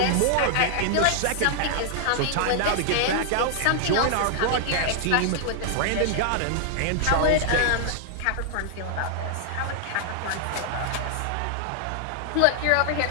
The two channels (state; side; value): different; both; correlation -0.01